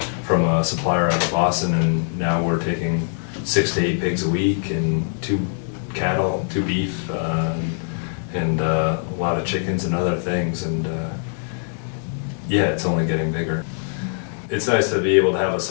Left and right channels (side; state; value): right; silent; 64 dB below the other